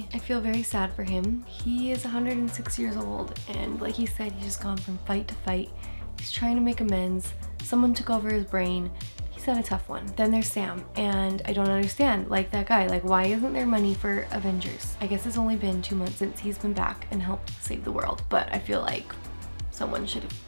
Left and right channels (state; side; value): inverted; both; correlation -1.00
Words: I feel very sad for him. He is 106 years old, and like he said, he's just gone from fight to fight. He's trying to make amends. Someone took over his brain. He's had a tough one. Then there's Sam, and I don't understand, like that guy, like why isn't there money for Avengers? I guess it's only been 2 months since he's been back and helped save the world, but I feel like someone should have